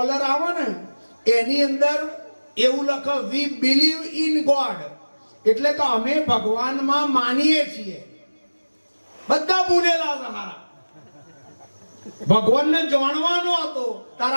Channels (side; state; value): both; inverted; correlation -1.00